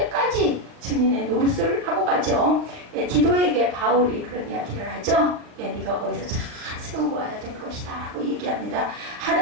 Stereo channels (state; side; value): late; left; 39 ms